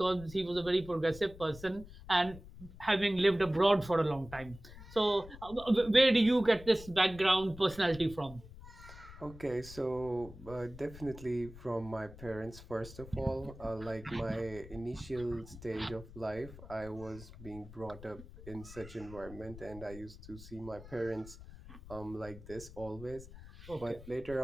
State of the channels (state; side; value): noise; left; rumble, 16 dB below the sound